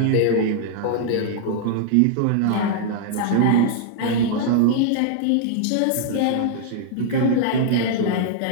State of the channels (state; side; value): different; both; correlation -0.01